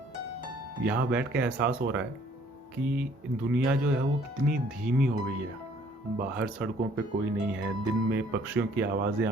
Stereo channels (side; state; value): both; normal; correlation 0.60